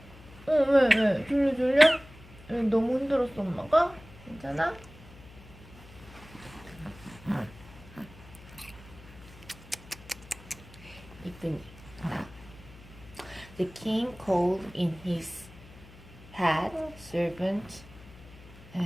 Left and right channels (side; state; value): left; noise; hum, 20 dB below the sound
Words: 왜? 졸려? 너무 힘들었어 엄마가? 괜찮아? 이쁜이. The king called in his head servant